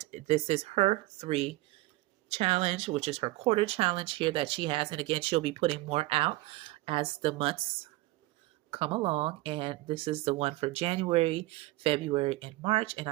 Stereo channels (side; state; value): left; quieter; 19.4 dB